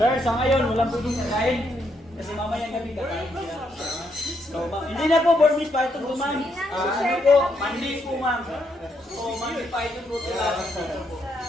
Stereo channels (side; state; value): both; normal; correlation 0.76